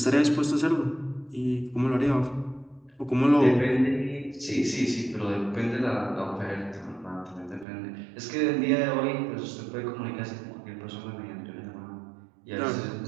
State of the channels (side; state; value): left; drops out; at 7.7 s